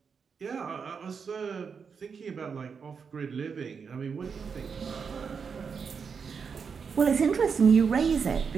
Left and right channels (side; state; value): left; quieter; 5.9 dB